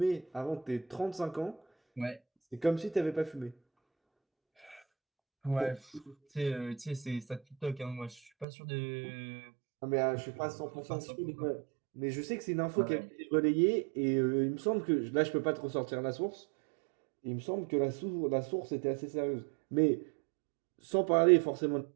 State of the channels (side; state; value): left; drops out; at 8.5 s